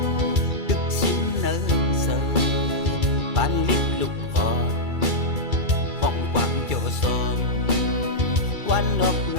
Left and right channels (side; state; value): left; late; 2.3 ms